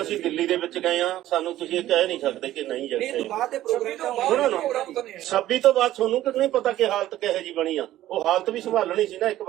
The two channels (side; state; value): left; quieter; 14.0 dB